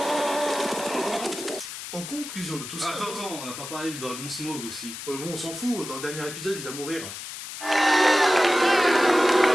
En conclusion, conclusion de tout ça. Attends, on n'a pas parlé du dragon Smog aussi. Ouais, bon, on s'en fout, dans le dernier épisode, il va mourir.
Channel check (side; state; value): left; noise; hiss, 9 dB below the sound